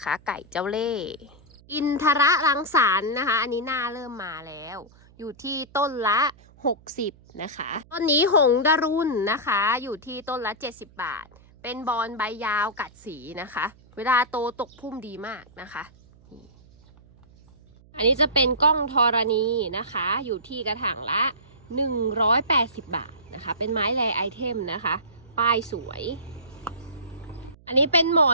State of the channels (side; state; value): right; noise; hum, 26 dB below the sound